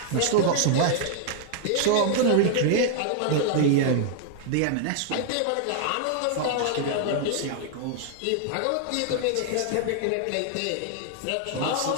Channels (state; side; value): different; both; correlation 0.00